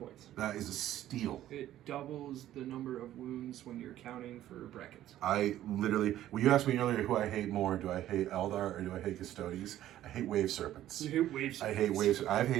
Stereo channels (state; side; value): quieter; left; 13.0 dB